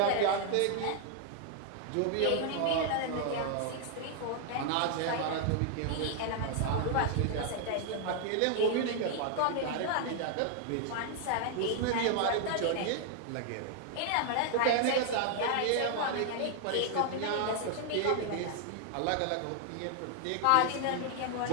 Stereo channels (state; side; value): different; both; correlation 0.00